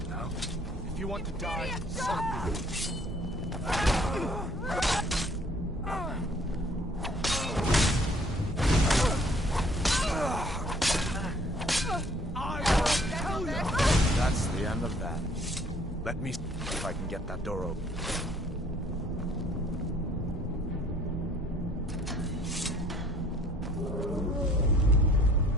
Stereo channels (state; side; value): normal; both; correlation 0.59